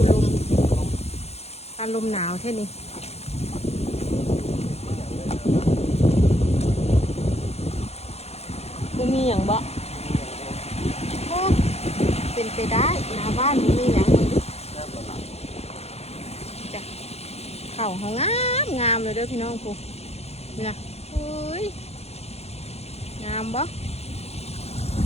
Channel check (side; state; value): right; late; 0.30 ms